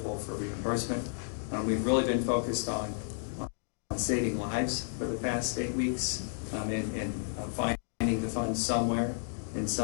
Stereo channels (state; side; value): silent; right; digital silence